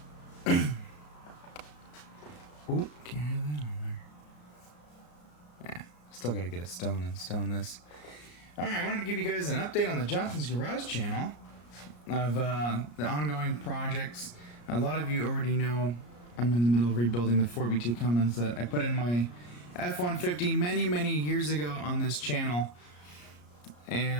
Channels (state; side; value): late; right; 34 ms